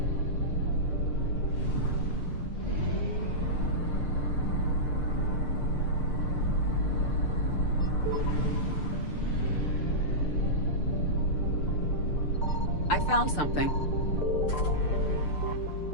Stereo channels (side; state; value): right; late; 6.7 ms